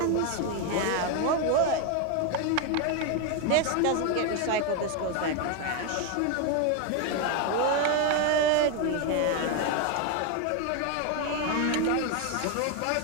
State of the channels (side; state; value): both; different; correlation 0.01